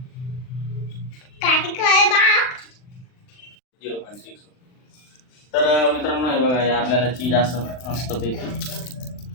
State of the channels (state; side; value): late; right; 39 ms